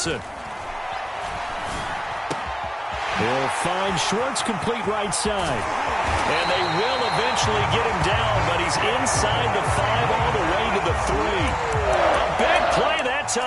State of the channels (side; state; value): both; identical; correlation 1.00